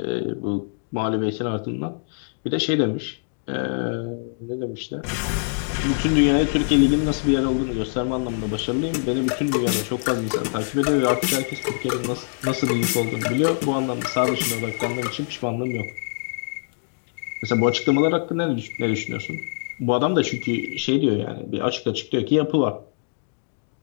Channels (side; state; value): right; silent; digital silence